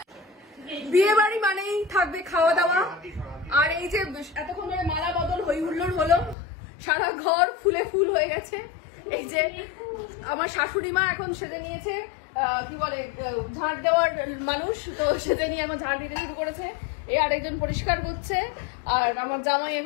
বিয়ে বাড়ি মানেই থাকবে খাওয়া দাওয়া, আর এই যে এতক্ষণ ধরে মালা বদল হই হুল্লোড় হলো, সারা ঘর ফুলে ফুল হয়ে গেছে। এই যে আমার শাশুড়ি মা এখন সেজে নিয়েছে কি বলে ঝাড় দেওয়ার মানুষ, তো সেজে নিয়ে এখন ঝাড় দিতে শুরু করেছে। এই আরেকজন পরিষ্কার করছে, আর আমার জামাই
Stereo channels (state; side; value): drops out; right; at 6.4 s